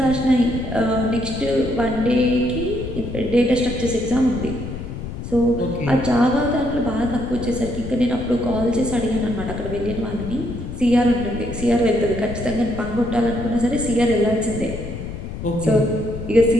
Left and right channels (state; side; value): noise; left; rumble, 8 dB below the sound